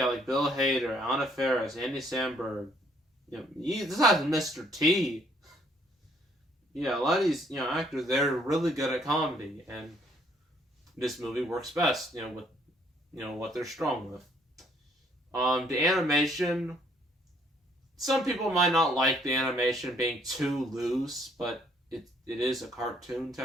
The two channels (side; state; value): both; normal; correlation 0.65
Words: Bill Hader, Anna Faris, Andy Samberg. This has Mr. T. Yeah, a lot of these, actors, they're really good at comedy, and this movie works best, with, what they're strong with. The animation, some people might not like the animation being too loose, but it is a cartoon,